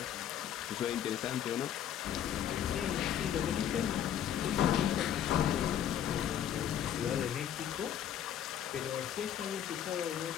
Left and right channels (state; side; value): quieter; right; 10.0 dB